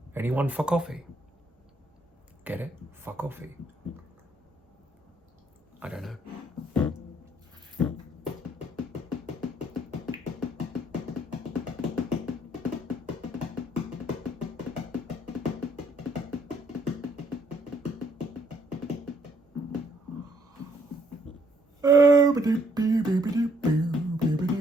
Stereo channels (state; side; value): normal; both; correlation 0.67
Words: Anyone for coffee? Get it? For coffee. I don't know.